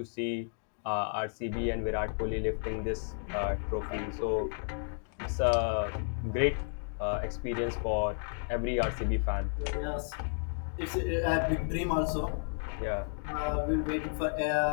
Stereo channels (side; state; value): right; silent; 56 dB below the other